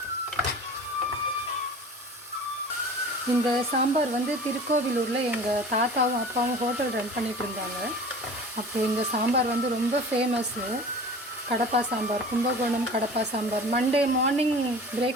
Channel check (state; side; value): normal; both; correlation 0.40